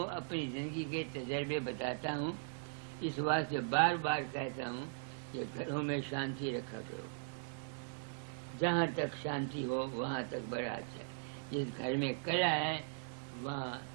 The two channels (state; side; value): silent; left; digital silence